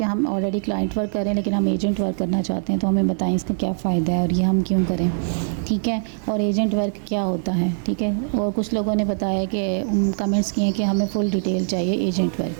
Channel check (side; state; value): left; silent; digital silence